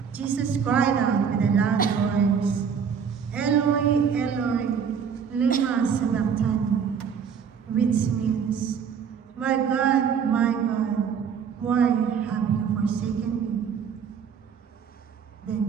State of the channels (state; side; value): quieter; left; 7.0 dB